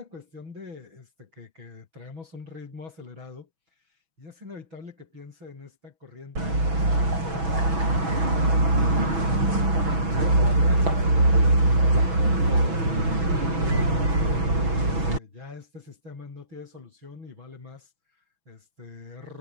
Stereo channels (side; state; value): left; late; 6.1 ms